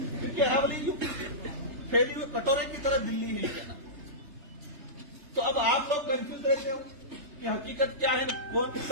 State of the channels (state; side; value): late; left; 3.3 ms